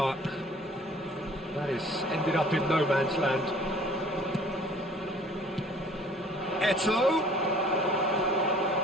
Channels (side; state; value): both; normal; correlation 0.52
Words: That has ended up in no man's land. Eto'o.